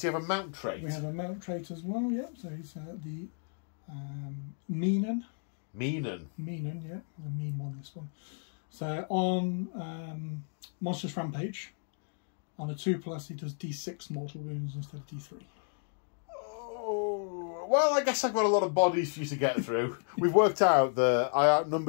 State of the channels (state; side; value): silent; right; 56 dB below the other